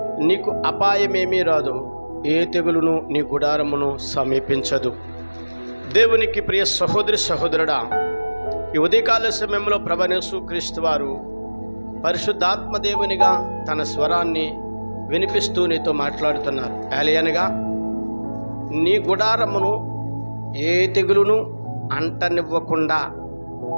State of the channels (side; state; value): both; inverted; correlation -1.00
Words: నీకు అపాయమేమీ రాదు, ఏ తెగులును నీ గుడారమును సమీపించదు. దేవునికి ప్రియ సహోదరి సహోదరుడా, ఈ ఉదయకాల సమయంలో ప్రభువైన యేసుక్రీస్తు వారు పరిశుద్ధాత్మ దేవునిగా తన స్వరాన్ని వినిపిస్తూ నీతో మాట్లాడుతున్నారు. ఏలయనగా నీ గుడారమును ఏ తెగులును అంటనివ్వకుండా